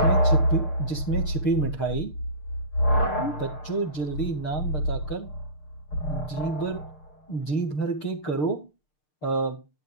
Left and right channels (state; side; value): late; right; 6.6 ms